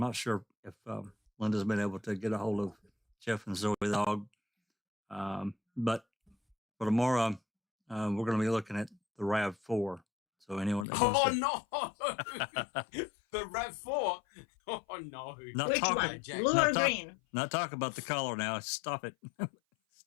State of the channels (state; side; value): drops out; right; at 10.9 s